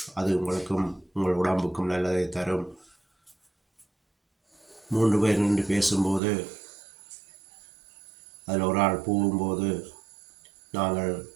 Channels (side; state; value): left; drops out; at 6.2 s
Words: அது உங்களுக்கும் உங்கள் உடம்புக்கும் நல்லதை தரும். 3 பேர் நின்று பேசும்போது அதில் ஒரு ஆள் போகும்போது நாங்கள்